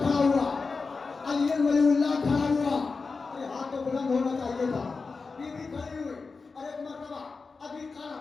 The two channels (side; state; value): right; quieter; 4.4 dB